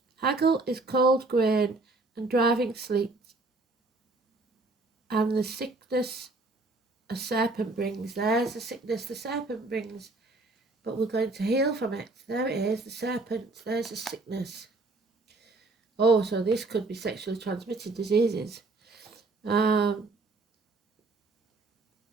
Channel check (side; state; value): left; quieter; 3.3 dB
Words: Haggle is cold grain and driving sleet, and the sickness a serpent brings. There's the sickness the serpent brings, but we're going to heal from it. There it is, the serpent. There's the sickness. Oh, so this could be sexually transmitted diseases. The